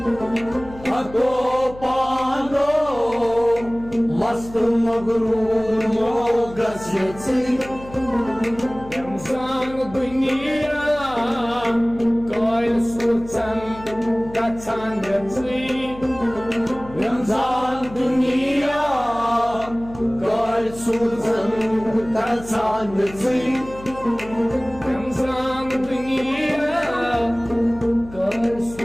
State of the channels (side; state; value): left; noise; hum, 17 dB below the sound